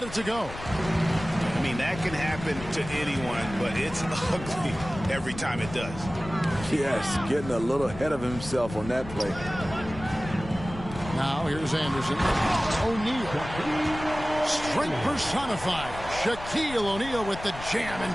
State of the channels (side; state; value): left; noise; rumble, 12 dB below the sound